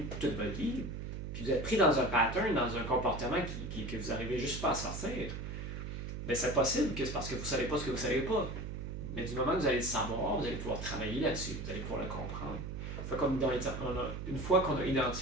toute votre vie, puis vous êtes pris dans un pattern, dans un comportement que vous n'arrivez juste pas à sortir, c'est possible que c'est parce que vous ne savez pas ce que vous ne savez pas. Mais du moment que vous allez le savoir, vous allez pouvoir travailler là-dessus, vous allez pouvoir le comprendre. Une fois qu'on a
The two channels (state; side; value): noise; right; hum, 6 dB below the sound